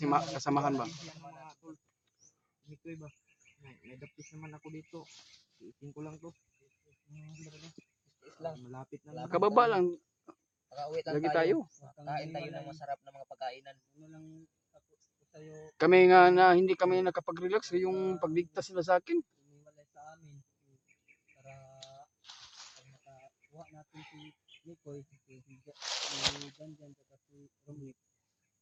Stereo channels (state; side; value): identical; both; correlation 1.00